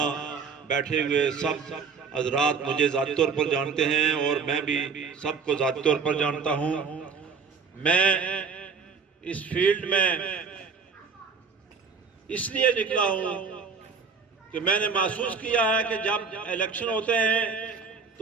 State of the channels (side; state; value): left; quieter; 5.5 dB